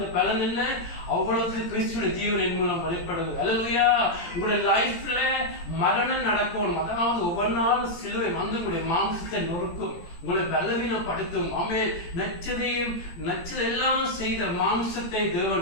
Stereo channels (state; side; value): late; right; 17 ms